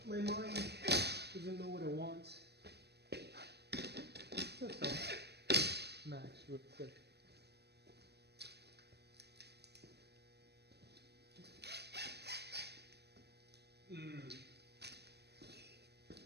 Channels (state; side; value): late; left; 0.48 ms